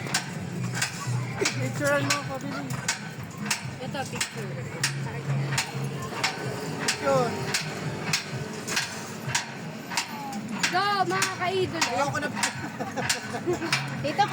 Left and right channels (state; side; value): identical; both; correlation 1.00